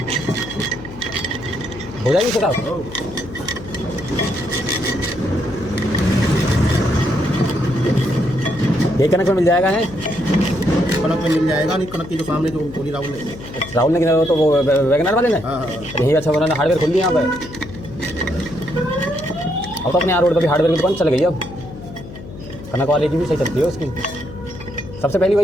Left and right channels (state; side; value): noise; left; hum, 14 dB below the sound